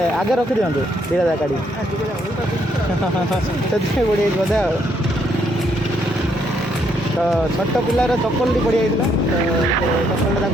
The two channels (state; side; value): normal; both; correlation 0.72